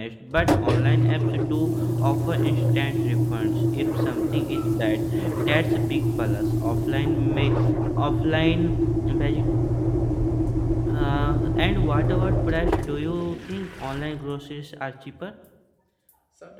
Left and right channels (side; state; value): both; identical; correlation 1.00